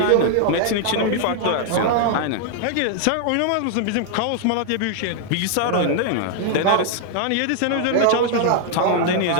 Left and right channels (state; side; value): different; both; correlation 0.00